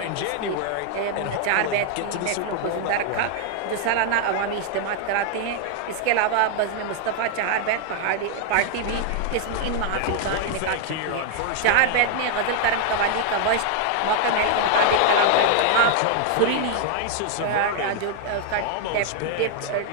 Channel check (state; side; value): different; both; correlation 0.00